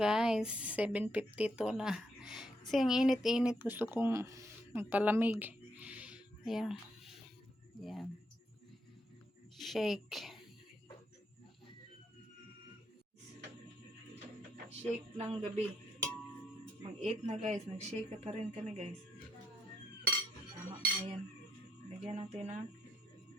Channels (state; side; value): normal; both; correlation 0.77